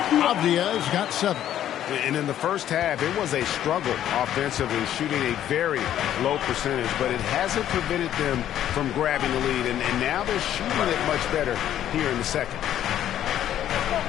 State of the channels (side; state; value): right; quieter; 11.3 dB